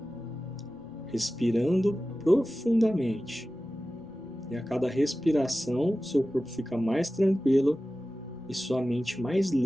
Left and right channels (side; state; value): left; noise; rumble, 30 dB below the sound